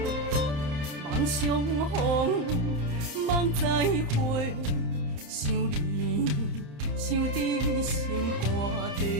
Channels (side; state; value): left; late; 35 ms